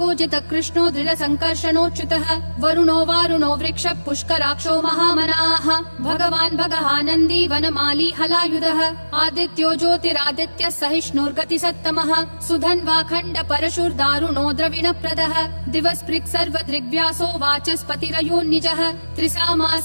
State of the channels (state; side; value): inverted; both; correlation -1.00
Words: कृष्णो दृढ संकर्षणोच्युतः वरुणो वारुणो वृक्ष पुष्कराक्षो महामनाः भगवान् भगहानन्दी वनमाली हलायुधः आदित्यो ज्योतिरादित्य सहिष्णुर्गति सत्तमः सुधन्वाखण्ड परशुर्दारुणो द्रविणप्रदः दिवस्पृक् सर्वदृग्व्यासो वाचस्पतिरयोन्निजः